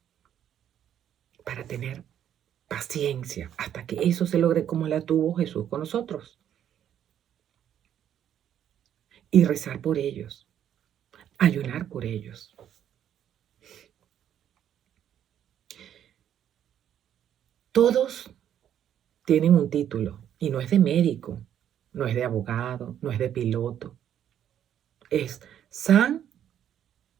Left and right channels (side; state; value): left; quieter; 10.1 dB